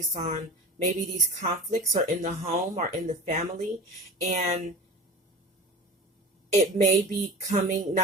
on maybe these conflicts are in the home or in the family, and it may be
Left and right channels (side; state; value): both; normal; correlation 0.35